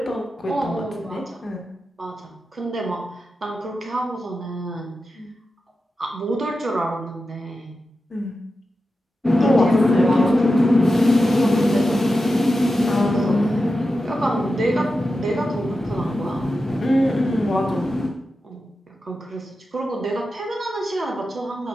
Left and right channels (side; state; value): both; normal; correlation 0.91